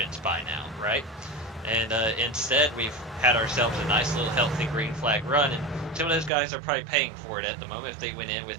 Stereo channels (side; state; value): left; drops out; at 6.3 s